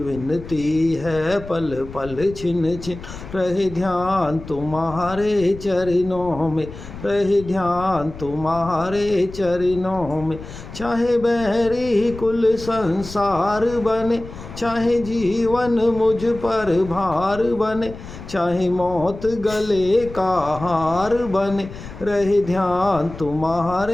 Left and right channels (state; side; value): noise; left; rumble, 13 dB below the sound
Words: है पल पल छिन छिन रहे ध्यान तुम्हारे चरणों में, रहे ध्यान तुम्हारे चरणों में। चाहे बैरी कुल संसार बने, चाहे जीवन मुझ पर भार बने, चाहे मौत गले का हार बने, रहे ध्यान